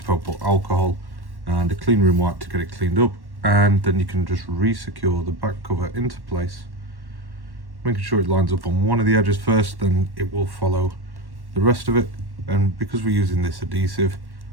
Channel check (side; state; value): left; late; 1.1 ms